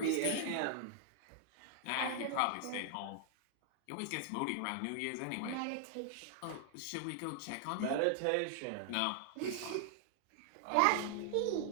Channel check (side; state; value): both; different; correlation 0.00